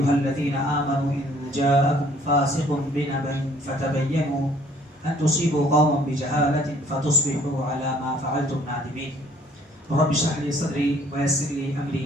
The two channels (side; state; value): both; normal; correlation 0.58